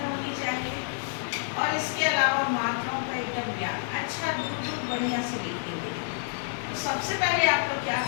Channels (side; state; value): right; silent; 59 dB below the other